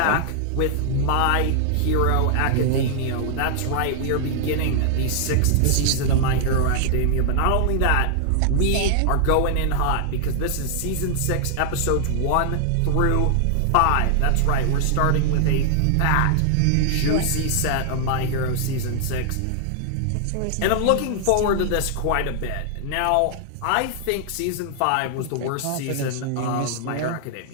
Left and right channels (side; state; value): both; different; correlation -0.01